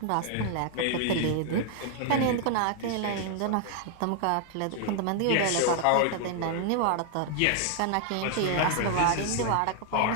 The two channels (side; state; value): both; different; correlation 0.00